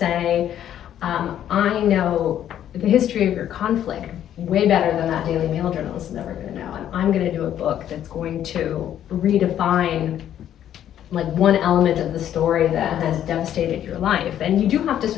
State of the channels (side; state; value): right; quieter; 10.8 dB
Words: I know the history of your conflict way better than that Daily Mail journalist is ever gonna know. And I'm gonna do a book that's going to redefine like one element of the story that has devastated your life, and you do have to